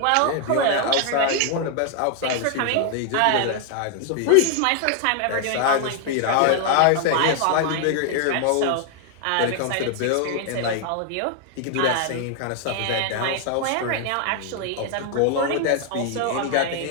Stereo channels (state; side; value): different; both; correlation 0.00